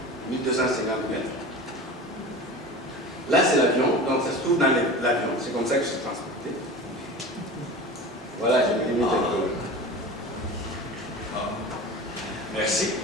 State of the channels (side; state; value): both; normal; correlation 0.33